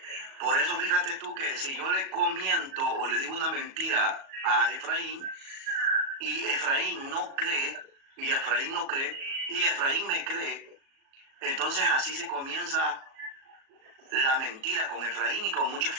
por eso fíjate tú que si yo le comiento o le digo una mentira a Efraín, y Efraín no cree, y Efraín no cree, y Efraín me cree, entonces así se comienza la mentira con Efraín y con muchas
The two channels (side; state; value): left; late; 37 ms